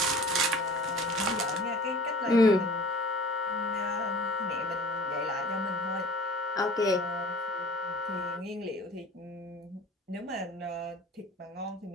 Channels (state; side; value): normal; both; correlation 0.44